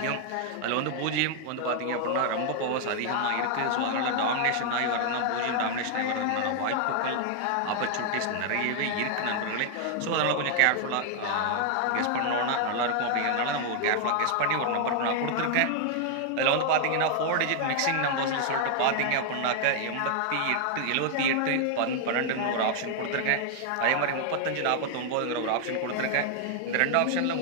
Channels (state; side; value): different; both; correlation 0.00